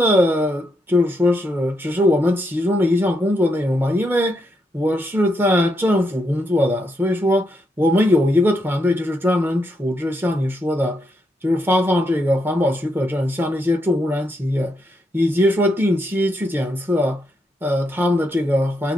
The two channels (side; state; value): both; normal; correlation 0.80